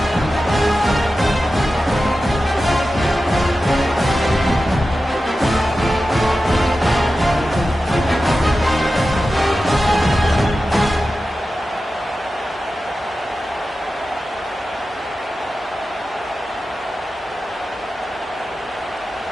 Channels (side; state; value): both; normal; correlation 0.93